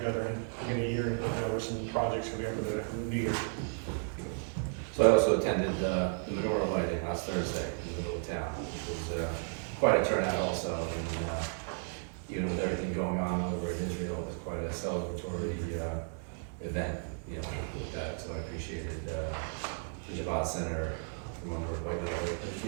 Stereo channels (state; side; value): silent; left; 55 dB below the other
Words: in a year and look over some projects we have that need. So I also attended the menorah lighting last Thursday in the middle of town, which was quite a turnout also. And even with everything going on over in Israel, it was quite a celebratory event, with that. So I appreciated the Javad Center from over at White Lake,